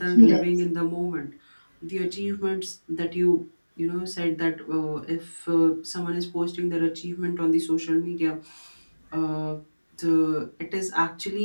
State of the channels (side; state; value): both; inverted; correlation -1.00